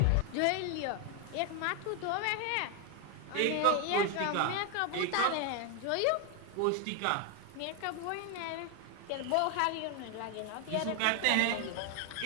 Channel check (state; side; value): different; both; correlation 0.01